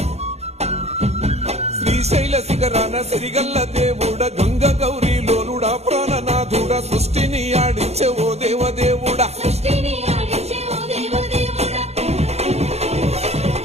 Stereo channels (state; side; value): late; left; 0.31 ms